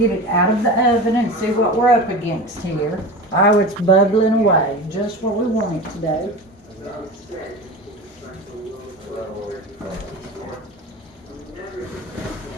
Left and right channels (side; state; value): both; normal; correlation 0.30